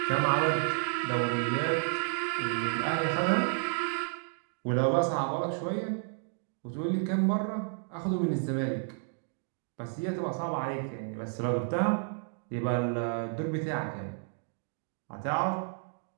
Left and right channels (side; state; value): left; silent; 57 dB below the other